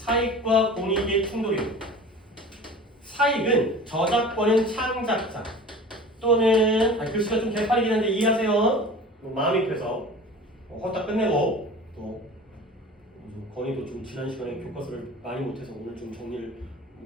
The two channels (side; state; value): both; normal; correlation 0.39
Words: 공익의 충돌이에요. 사익은 저작권은 창작자 또는 글씨가 좀 개판이긴 한데 이해하세요? 마음이 급해서 헛다 끝내고 또 건이도 좀 지난 시간에 교과서를 많이 못해서 오늘 좀 정리를